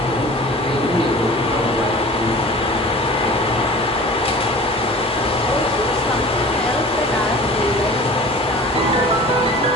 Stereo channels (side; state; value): both; normal; correlation 0.41